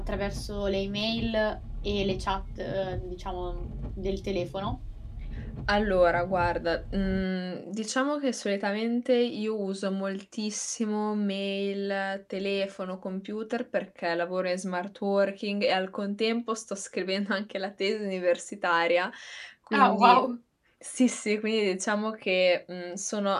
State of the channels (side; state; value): both; identical; correlation 1.00